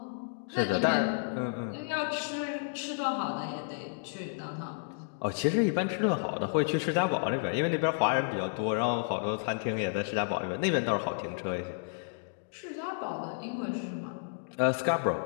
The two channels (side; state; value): right; silent; digital silence